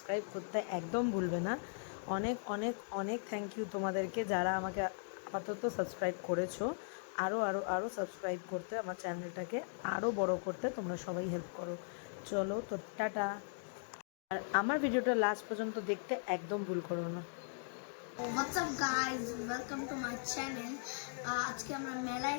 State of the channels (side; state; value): right; silent; digital silence